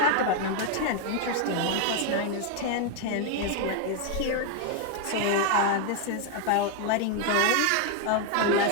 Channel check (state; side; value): different; both; correlation 0.01